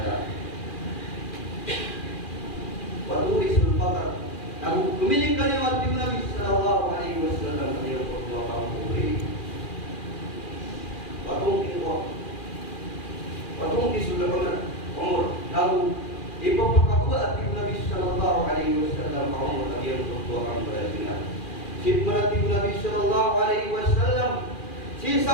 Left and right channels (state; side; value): late; right; 2.4 ms